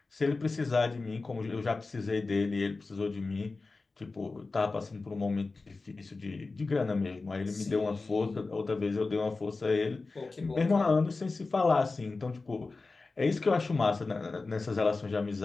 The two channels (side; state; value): right; quieter; 3.7 dB